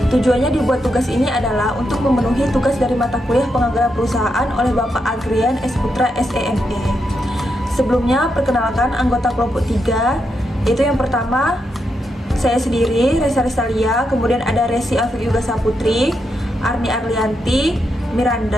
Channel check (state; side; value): normal; both; correlation 0.83